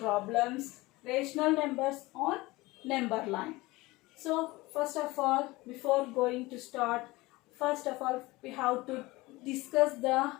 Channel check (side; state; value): right; quieter; 20.9 dB